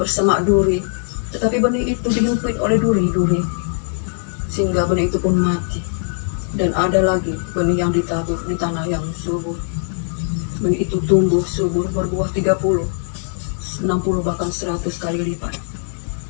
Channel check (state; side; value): silent; right; digital silence